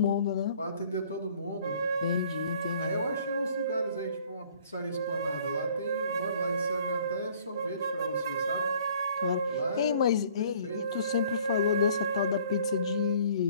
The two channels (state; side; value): inverted; both; correlation -0.56